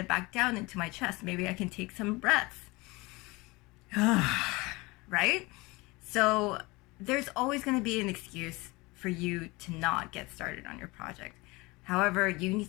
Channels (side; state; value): right; quieter; 23.5 dB